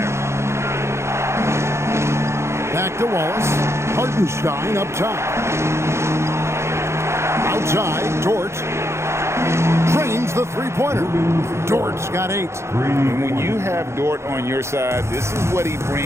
Back to Wallace. Hartenstein up top. Outside, Dort drains the three-pointer. Dort's got 8. And when you have Dort on your side, this is what he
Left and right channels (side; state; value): left; late; 0.13 ms